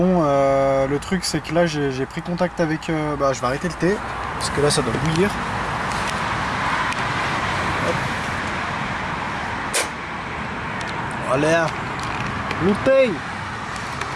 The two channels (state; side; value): identical; both; correlation 1.00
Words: le truc c'est que là j'ai pris contact avec bah je vais arrêter le thé parce que là ça doit bouillir. Hop. Allez, le thé.